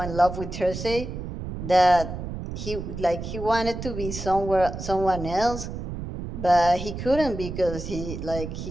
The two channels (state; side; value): noise; right; rumble, 7 dB below the sound